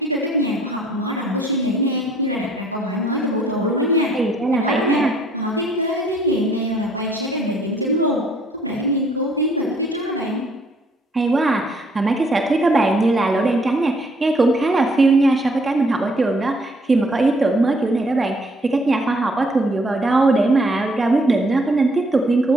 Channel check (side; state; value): both; normal; correlation 0.64